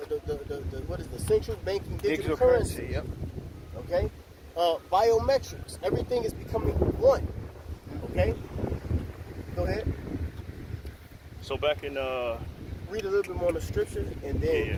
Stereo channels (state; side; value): identical; both; correlation 1.00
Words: What is the central banking digital currency? Yep. Okay. Biometrics. Everything is becoming one. Okay. Go ahead. So back in Read a little bit more on the scripture and